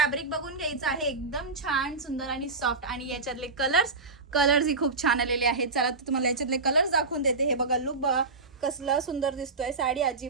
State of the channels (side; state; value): left; quieter; 3.7 dB